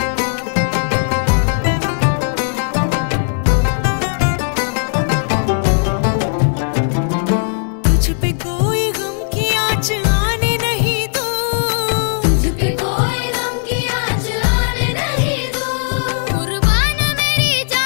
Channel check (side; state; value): right; silent; digital silence